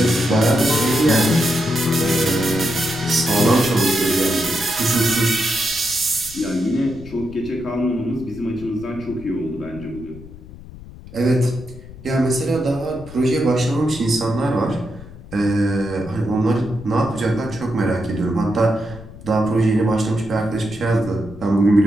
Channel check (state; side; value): noise; left; rumble, 17 dB below the sound